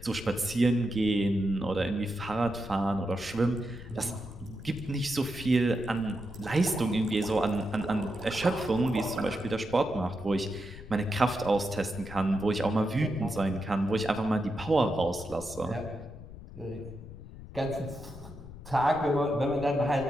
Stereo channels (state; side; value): noise; left; rumble, 15 dB below the sound